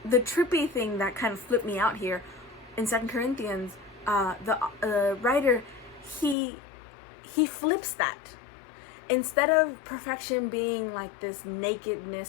The trippy thing that kind of flipped me out here in 2 Corinthians, the writer, he flips that. Instead of perfection being like this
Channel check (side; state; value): right; drops out; at 6.4 s